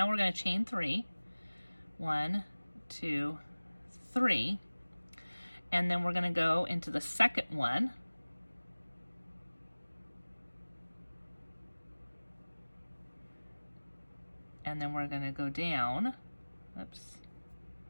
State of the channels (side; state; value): both; inverted; correlation -1.00